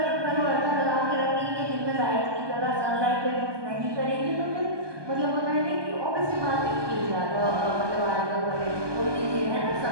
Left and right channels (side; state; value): left; late; 1.2 ms